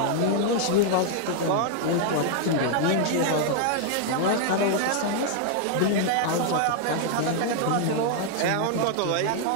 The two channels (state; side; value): different; both; correlation 0.00